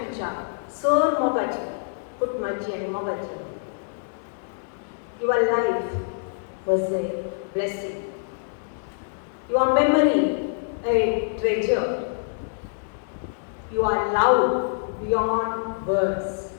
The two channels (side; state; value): right; silent; digital silence